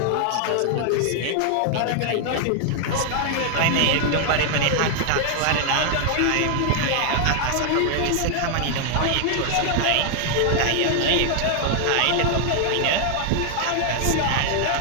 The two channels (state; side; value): different; both; correlation 0.00